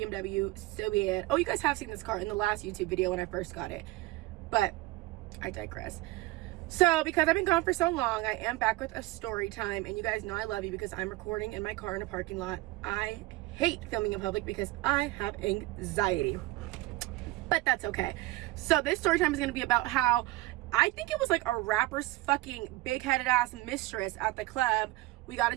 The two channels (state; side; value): quieter; left; 18.9 dB